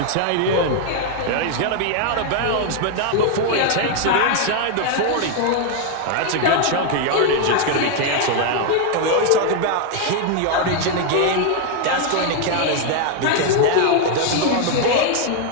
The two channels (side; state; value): both; different; correlation 0.00